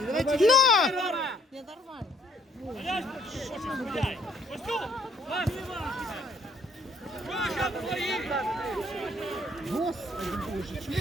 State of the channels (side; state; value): both; normal; correlation 0.63